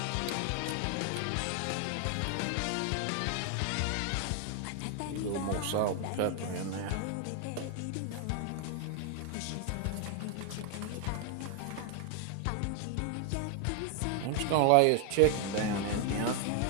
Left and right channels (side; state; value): both; different; correlation 0.00